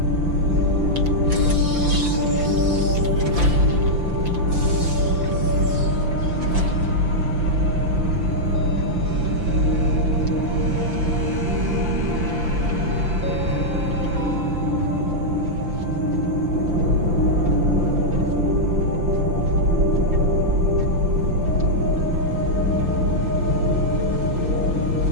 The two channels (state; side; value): late; left; 5.9 ms